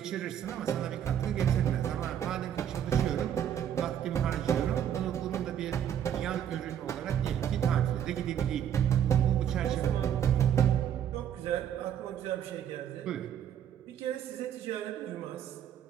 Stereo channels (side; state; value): left; quieter; 9.6 dB